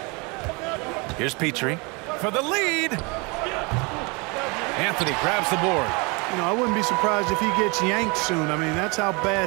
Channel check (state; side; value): quieter; left; 29.1 dB